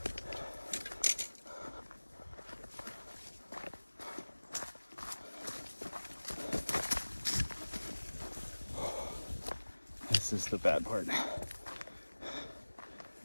This is the bad part.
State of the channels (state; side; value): inverted; both; correlation -1.00